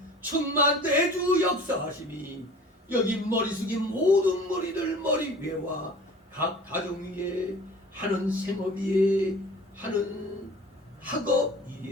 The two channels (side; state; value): both; normal; correlation 0.44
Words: 충만 내주 역사하심이 여기 머리 숙인 모든 머리들 머리 위에와 각 가정 위에 하는 생업 위에 하는 학업